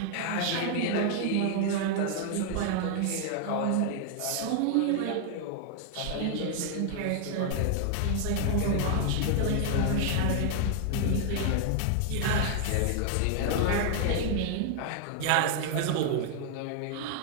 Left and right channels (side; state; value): both; different; correlation 0.00